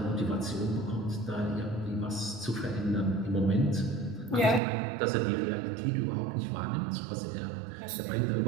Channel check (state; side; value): drops out; left; at 4.6 s